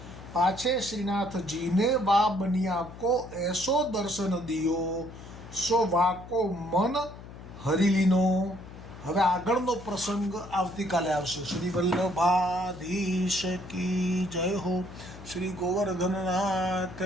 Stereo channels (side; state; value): left; noise; hum, 15 dB below the sound